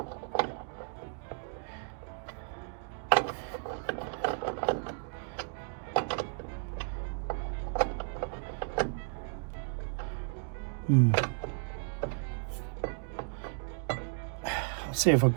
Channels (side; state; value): left; silent; 55 dB below the other